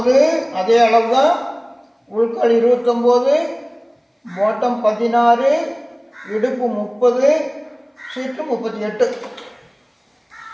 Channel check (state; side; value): identical; both; correlation 1.00